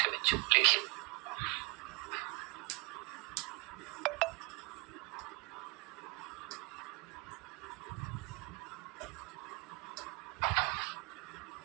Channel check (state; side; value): quieter; left; 28.1 dB